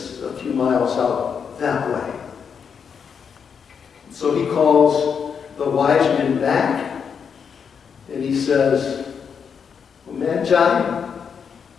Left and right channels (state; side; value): quieter; right; 6.7 dB